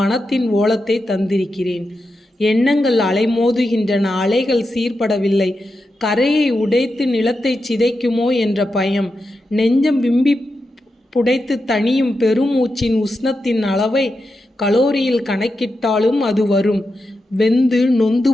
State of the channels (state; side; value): normal; both; correlation 0.88